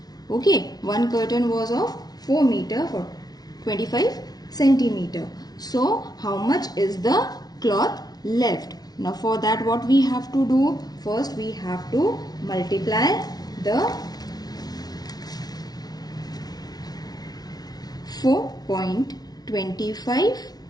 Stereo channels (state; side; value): late; right; 0.19 ms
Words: Okay, 1 curtain was of 4 meter for 25 centimeter. So how much is the cloth left? Now for that, what we have to do? First we have to multiply the 4.25